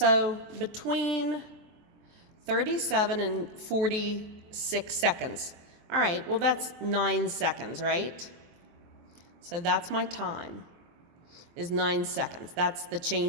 between 37 and 46 seconds. All right, well that's 9 seconds, right? So that's my time, is 9 seconds. That's the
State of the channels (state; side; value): late; left; 23 ms